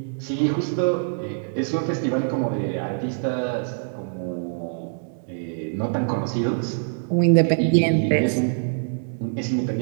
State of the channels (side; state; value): left; silent; digital silence